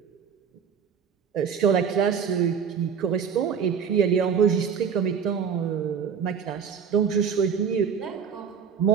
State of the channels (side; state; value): left; quieter; 7.0 dB